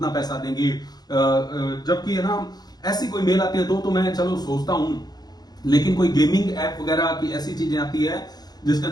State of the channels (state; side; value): late; right; 0.19 ms